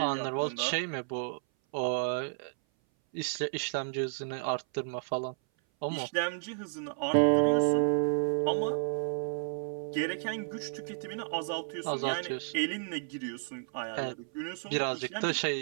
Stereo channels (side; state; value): left; silent; 56 dB below the other